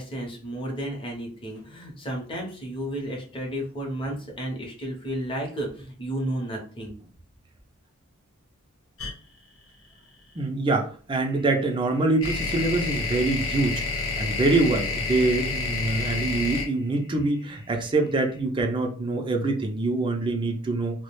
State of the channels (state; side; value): normal; both; correlation 0.53